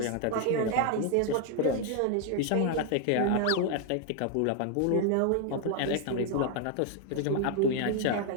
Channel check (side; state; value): both; different; correlation 0.00